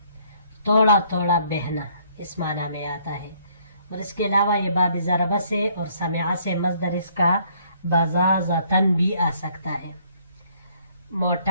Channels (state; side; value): inverted; both; correlation -0.65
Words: توڑا توڑا بہنا، اس معنی میں آتا ہے. اور اس کے علاوہ یہ باب ضربہ سے اور سمعہ سے مصدر اس کا بزازتن بھی آ سکتا ہے.